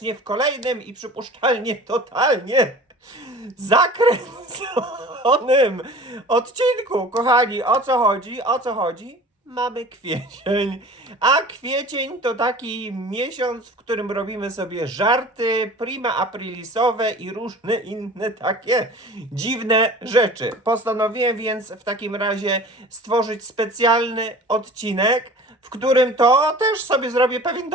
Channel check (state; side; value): normal; both; correlation 0.42